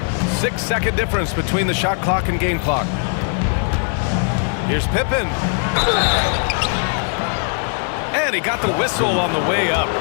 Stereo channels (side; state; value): right; silent; 55 dB below the other